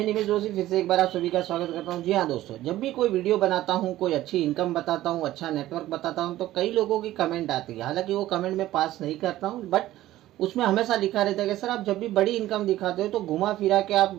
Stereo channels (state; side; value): quieter; left; 14.9 dB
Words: निमेश जोशी फिर से एक बार आप सभी का स्वागत करता हूं। जी हाँ दोस्तों, जब भी कोई वीडियो बनाता हूं, कोई अच्छी इनकम बताता हूं, अच्छा नेटवर्क बताता हूं, तो कई लोगों की कमेंट आती है। हालांकि वो कमेंट मैं पास नहीं करता हूं, बट उसमें हमेशा लिखा रहता है कि सर आप जब भी बड़ी इनकम दिखाते हो तो घुमा फिरा के